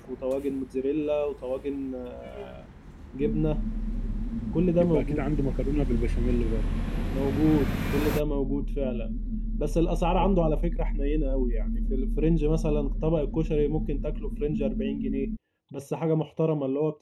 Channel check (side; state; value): both; identical; correlation 1.00